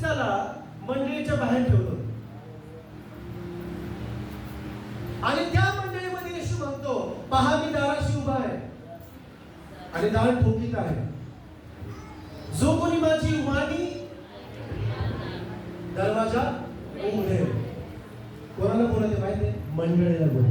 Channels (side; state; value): both; identical; correlation 1.00